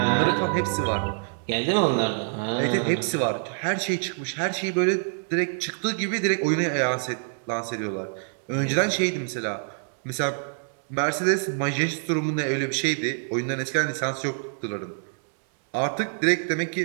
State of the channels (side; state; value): left; silent; digital silence